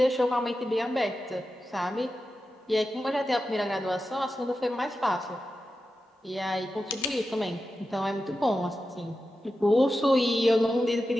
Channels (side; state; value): both; normal; correlation 0.91